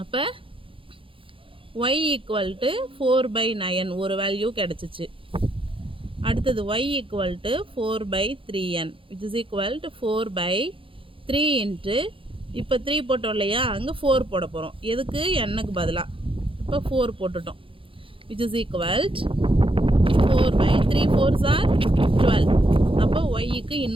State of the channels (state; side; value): late; left; 0.25 ms